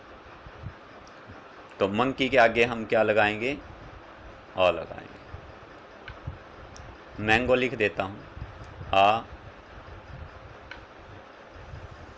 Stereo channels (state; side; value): identical; both; correlation 1.00